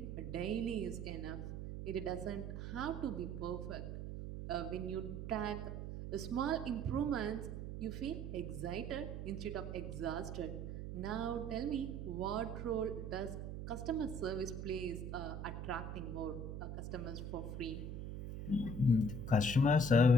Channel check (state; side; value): noise; right; hum, 6 dB below the sound